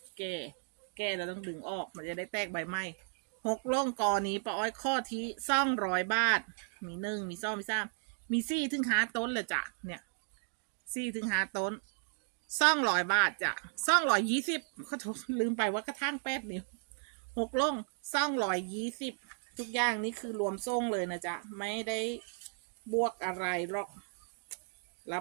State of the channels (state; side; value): silent; left; 55 dB below the other